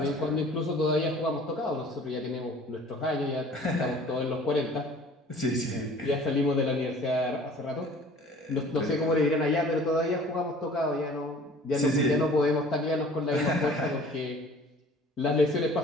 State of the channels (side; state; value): both; normal; correlation 0.49